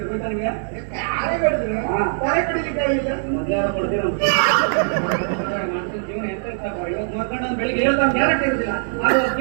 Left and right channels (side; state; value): left; silent; 57 dB below the other